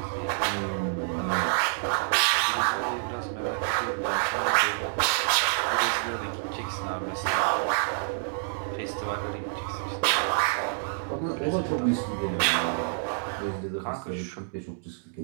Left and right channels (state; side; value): silent; left; digital silence